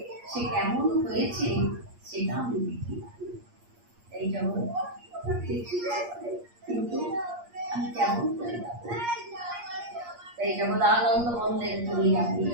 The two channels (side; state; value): left; late; 8.5 ms